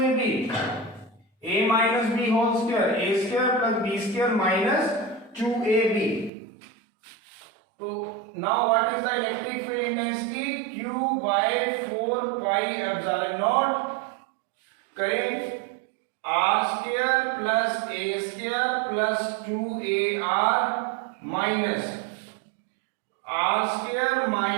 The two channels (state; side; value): drops out; left; at 6.3 s